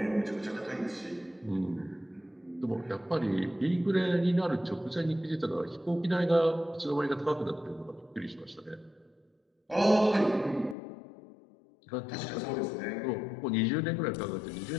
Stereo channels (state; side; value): drops out; right; at 10.8 s